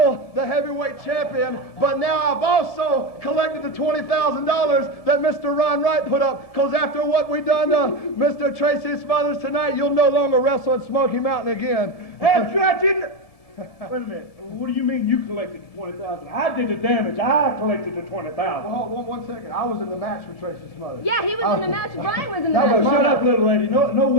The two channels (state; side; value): late; right; 1.7 ms